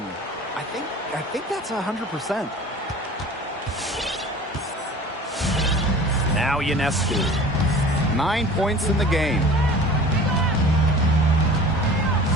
I think that's 100%. Now Ionescu. 9 points in the game.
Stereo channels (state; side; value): normal; both; correlation 0.42